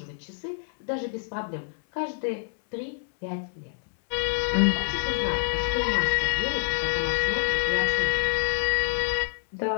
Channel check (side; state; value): right; silent; 60 dB below the other